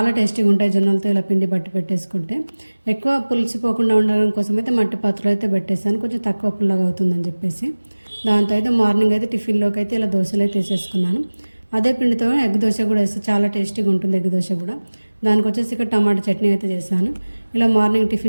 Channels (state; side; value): inverted; both; correlation -1.00